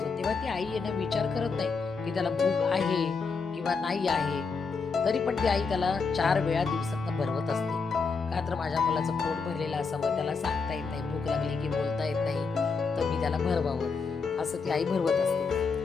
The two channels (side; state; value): right; quieter; 4.9 dB